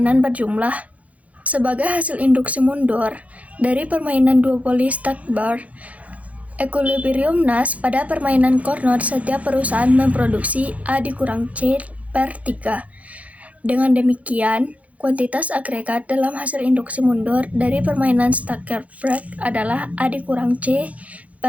berjumlah. Sebagai hasil induksi mundur dari permainan duopoli Stackbar equilibrium Nash pada permainan Carnot, setiap perusahaan memproduksi A dikurang C per 3. Dengan demikian, kuantitas agregat dalam hasil induksi mundur dari permainan Stackbar adalah A dikurang C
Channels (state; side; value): late; left; 0.068 ms